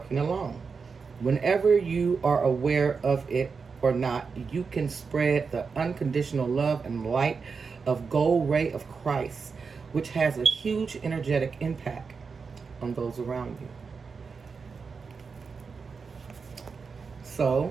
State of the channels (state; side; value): quieter; left; 5.2 dB